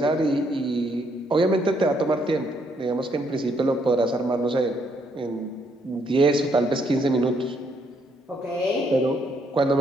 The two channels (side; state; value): both; normal; correlation 0.72